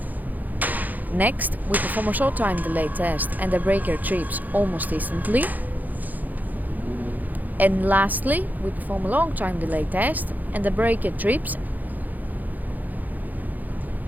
Next, we perform a short time delay test and the breaker trips almost instantly. And lastly, we perform a long time delay test and the breaker trips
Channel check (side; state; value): left; late; 0.083 ms